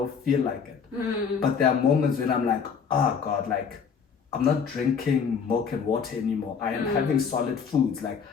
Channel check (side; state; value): right; quieter; 6.3 dB